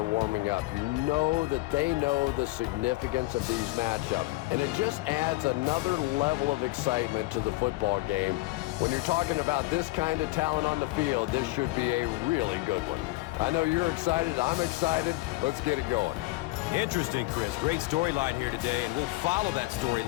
warming up. You know that they know the significance of these matchups, and it just adds another level of excitement to the football game. When you're talking about this kind of talent on the field, this should be a really good one. I know you're excited. I'm excited. Let's get it going. Interesting, Chris. Great storyline here today, and we'll follow that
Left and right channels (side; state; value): right; quieter; 20.4 dB